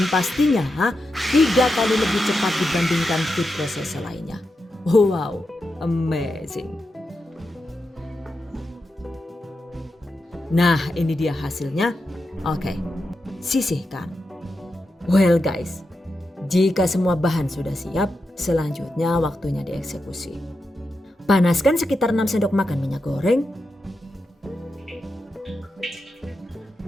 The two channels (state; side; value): normal; both; correlation 0.88